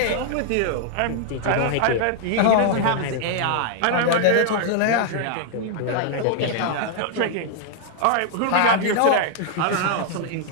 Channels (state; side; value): different; both; correlation 0.00